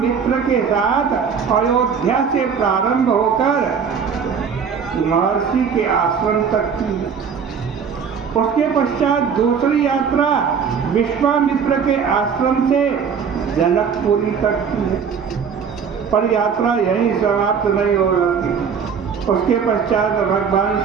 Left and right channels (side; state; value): left; quieter; 6.6 dB